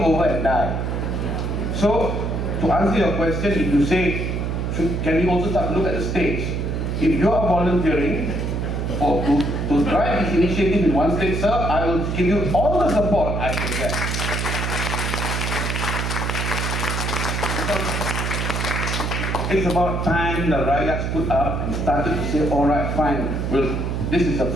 and die. So, to answer your question, if you say, can we also start to look at the states? If you are volunteering or to drive this initiative in one state, sir, I will give you all the support I can get. it's about time the Rakyat stood up and started to say, all right, fine, this is a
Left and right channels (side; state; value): right; noise; hum, 1 dB below the sound